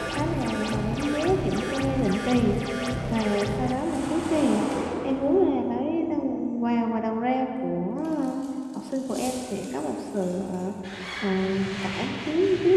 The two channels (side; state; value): both; identical; correlation 1.00